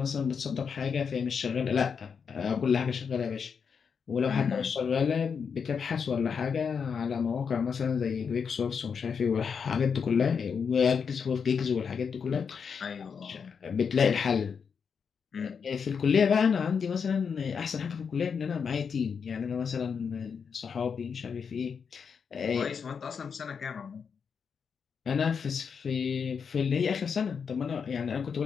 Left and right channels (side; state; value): right; quieter; 6.3 dB